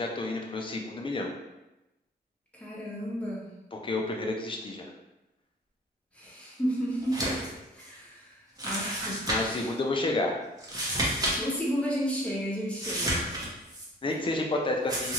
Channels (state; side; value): normal; both; correlation 0.49